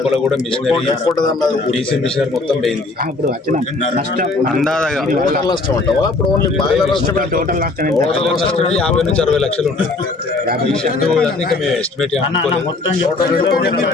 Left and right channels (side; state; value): right; quieter; 3.4 dB